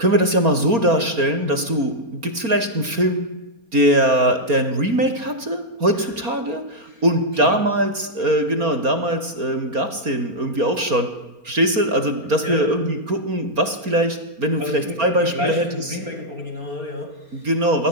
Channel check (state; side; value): late; left; 4.3 ms